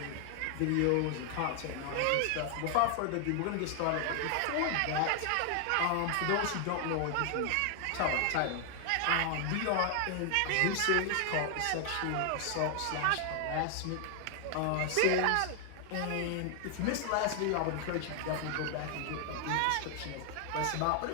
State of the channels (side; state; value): both; different; correlation 0.00